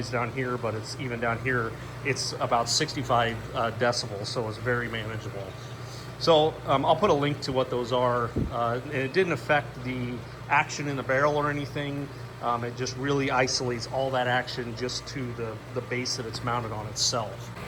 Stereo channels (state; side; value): identical; both; correlation 1.00